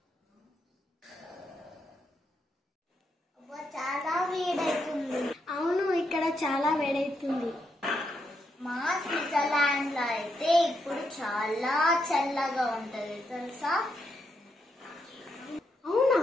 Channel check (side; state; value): both; normal; correlation 0.81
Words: చాలా వేడవుతుంది. అవును, ఇక్కడ చాలా వేడవుతుంది. మా స్విట్జర్లాండ్ లో అయితే ఇప్పుడు చాలా చల్లగా ఉంటది తెలుసా? అవునా?